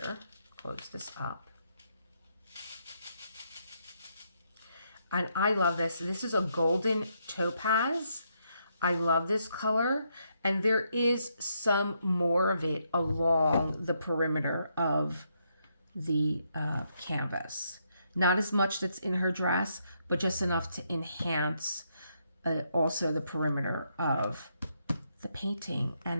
close this up. And I love this. This is a golden topaz. I love this color. And there is some more of it along the perimeter of the canvas. Not as much that's in her dress, but just enough to enhance also the perimeter of the painting.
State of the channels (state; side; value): inverted; both; correlation -0.77